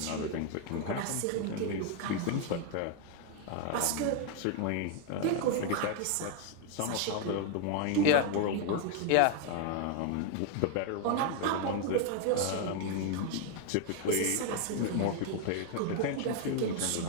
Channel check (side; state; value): both; different; correlation 0.00